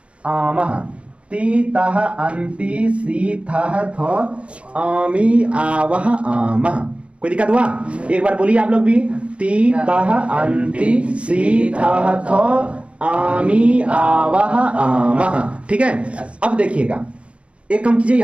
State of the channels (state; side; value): late; left; 0.061 ms